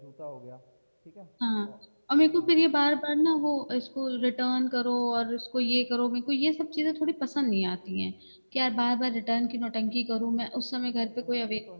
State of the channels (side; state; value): both; inverted; correlation -1.00